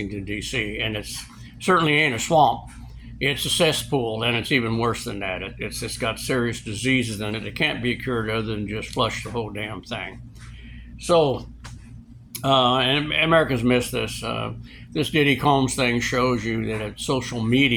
D.C., and it's certainly ain't a swamp. It's a cesspool, and it's even worse than that. It's got serious diseases in it. It can't be cured other than just flush the whole damn thing. So, and Americans miss this. This Diddy Combs thing shows you that social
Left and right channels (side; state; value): both; identical; correlation 1.00